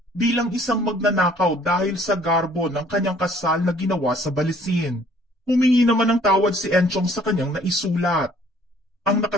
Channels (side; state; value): both; normal; correlation 0.58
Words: bilang isang magnanakaw dahil sa garbo ng kanyang kasal na ginawa sa Balisin. Humingi naman ng tawad si Enchong sa kanyang naisulat. Ang